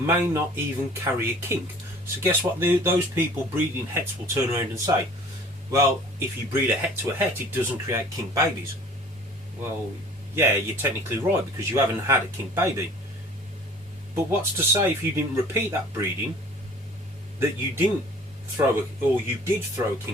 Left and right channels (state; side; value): normal; both; correlation 0.49